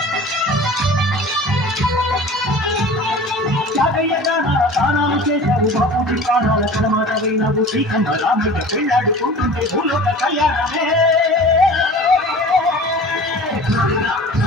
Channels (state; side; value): normal; both; correlation 0.40